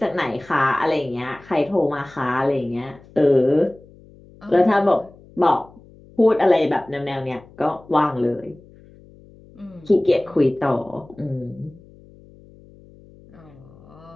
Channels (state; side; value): noise; left; hum, 24 dB below the sound